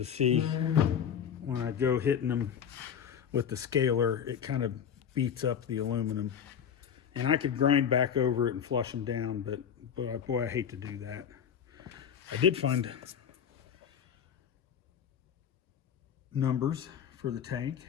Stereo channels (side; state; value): right; quieter; 8.2 dB